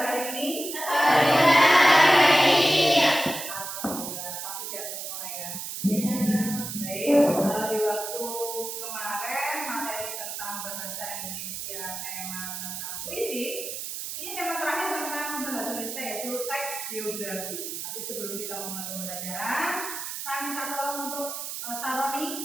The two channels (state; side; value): noise; right; hiss, 6 dB below the sound